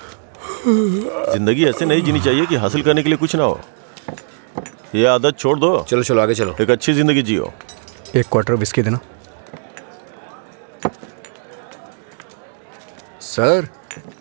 जिंदगी ऐसे नहीं जीनी चाहिए कि हासिल करने के लिए कुछ ना हो। ये आदत छोड़ दो। चलो चलो आगे चलो। एक अच्छी जिंदगी जियो। एक क्वार्टर विस्की देना। सर,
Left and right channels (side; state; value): left; silent; digital silence